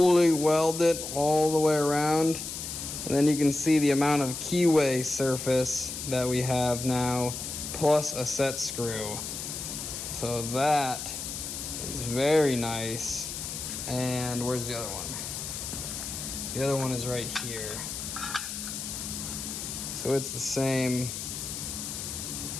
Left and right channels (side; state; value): left; noise; hiss, 6 dB below the sound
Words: weld it all the way around. And then you can see the amount of keyway surface that we have now, plus a set screw. So that is very nice. And where's the other one? The other one is right here. So it's the same.